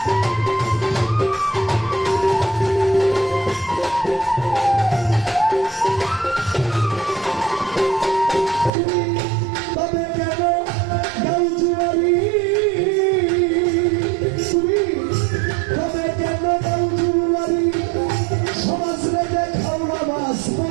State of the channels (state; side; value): drops out; left; at 8.7 s